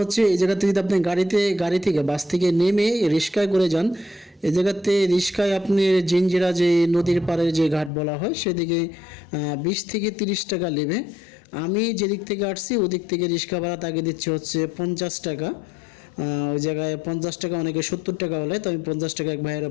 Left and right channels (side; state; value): right; drops out; at 7.9 s